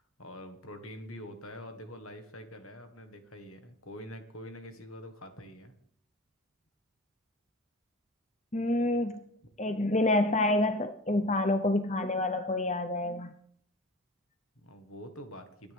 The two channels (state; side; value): normal; both; correlation 0.36